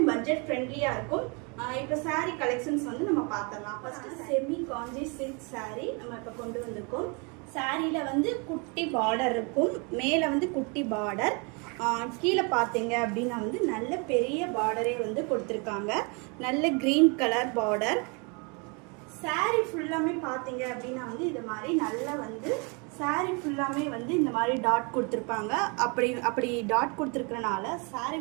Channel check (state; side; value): quieter; left; 32.5 dB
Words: பட்ஜெட் ஃப்ரெண்ட்லியா இருக்கும். இப்போ சாரீ கலெக்ஷன்ஸ் வந்து நம்ம பார்த்தலாம். ஃபர்ஸ்ட் செமி காஞ்சி சில்க் சாரீ நம்ம இப்போ கொண்டு வந்திருக்கோம். சாரீல வந்து குட்டி பார்டர் இருக்கும், மேல வந்து குட்டி பார்டர், கீழே பார்த்தீங்க அப்படின்னா வந்து நல்ல பெரிய பார்டரே வந்து கொடுத்துருக்காங்க. நல்ல கிரீன் கலர் பார்டர். சாரீ ஃபுல்லாமே பார்த்தீங்க அப்படின்னா வந்து இது மாதிரி நல்லா வந்து சாரீ ஃபுல்லாமே வந்து இந்த மாதிரி டாட் கொடுத்துருப்பாங்க. அப்படி டாட் கொடுத்துருக்கறனால சாரீ